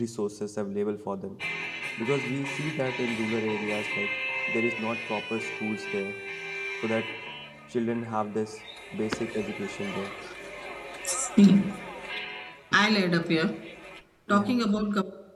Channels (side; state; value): both; identical; correlation 1.00